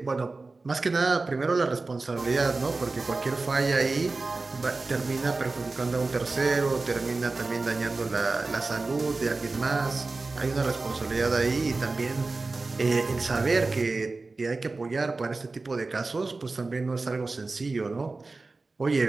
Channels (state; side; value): quieter; left; 3.6 dB